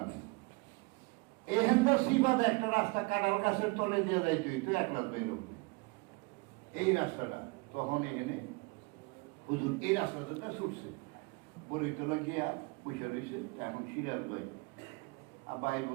এখান তো সিবাদে একটা রাস্তা কাঁঠাল গাছের তলে দিয়ে যাইতে হইতো, 1 লাখ বের হবে এই রাস্তাটা। তখন এখানে হুজুর এই রাস্তাটা ছুটছে, বলিতলা গিয়া পয়সা রয়েছে। এখন সিরাজ ভাই আবার আইব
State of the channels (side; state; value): left; quieter; 27.0 dB